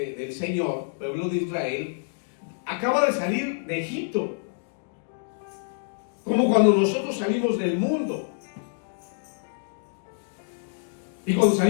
Señor, pueblo de Israel, acaba de salir de Egipto, como cuando nosotros salimos del mundo. Y cuando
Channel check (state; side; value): silent; right; digital silence